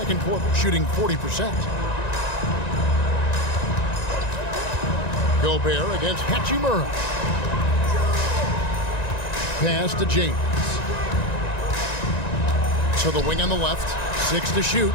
quarter, shooting 40%. Gobert against Hachimura. Pass to James. To the wing on the left. 6 to shoot.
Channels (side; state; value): right; late; 1.9 ms